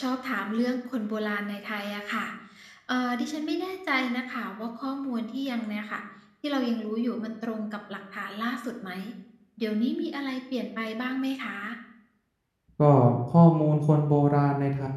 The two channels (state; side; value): identical; both; correlation 1.00